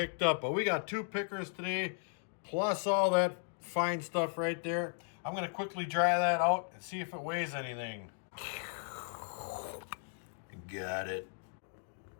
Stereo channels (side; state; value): right; silent; digital silence